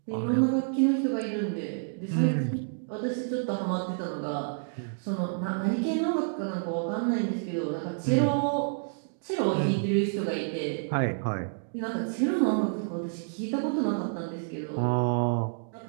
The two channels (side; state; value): left; silent; digital silence